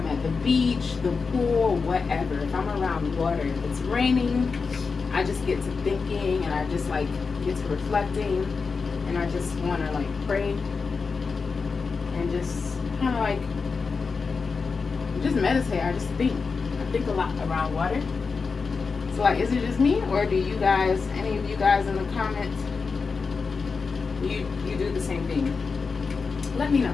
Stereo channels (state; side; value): quieter; right; 4.8 dB